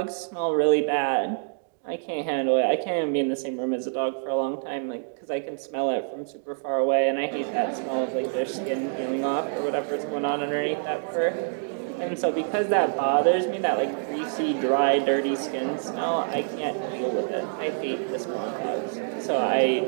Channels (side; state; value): left; silent; digital silence